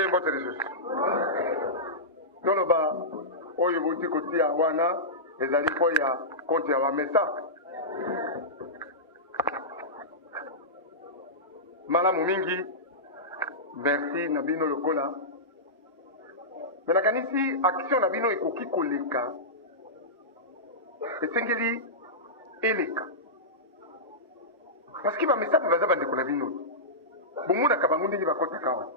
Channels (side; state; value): both; normal; correlation -0.15